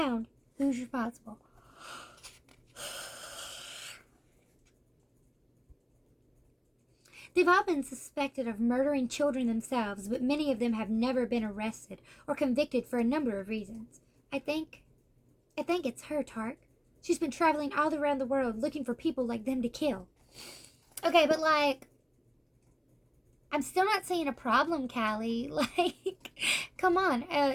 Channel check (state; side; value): identical; both; correlation 1.00